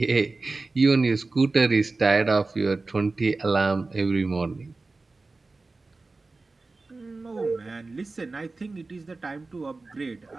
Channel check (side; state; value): left; quieter; 3.6 dB